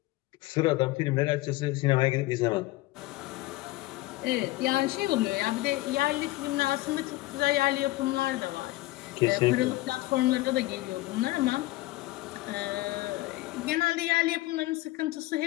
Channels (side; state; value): right; quieter; 19.0 dB